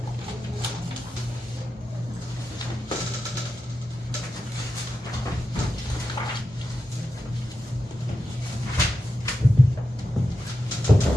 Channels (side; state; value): both; normal; correlation 0.89